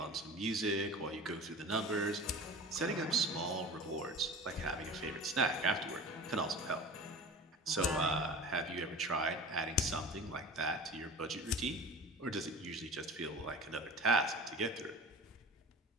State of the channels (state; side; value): normal; both; correlation 0.36